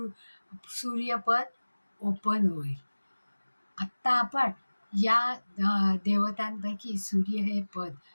ओपन होईल. आत्ता आपण या देवतांपैकी सूर्य हे पद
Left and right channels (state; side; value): inverted; both; correlation -1.00